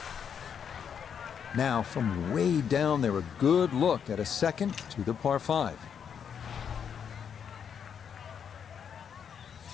Now, from way down there, a good look at a second to the par 5.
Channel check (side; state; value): right; quieter; 7.6 dB